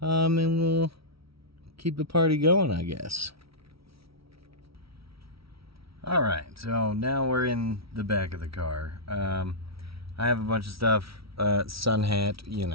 And we'll keep the party going, I guess. Alright, so now we're in the back of the car. I have a bunch of stuff. Sun hat, you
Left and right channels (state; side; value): late; left; 0.75 ms